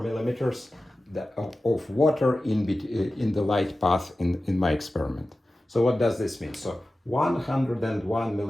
of water in the light path in my experiment. So what does this mean? So 101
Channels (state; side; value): normal; both; correlation 0.95